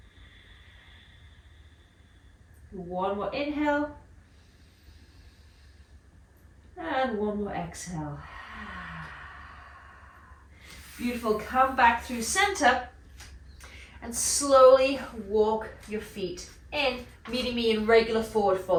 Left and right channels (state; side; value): identical; both; correlation 1.00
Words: One more inhale. And one more exhale. Beautiful. Come back through center and slowly walk your feet in, meeting me in regular forward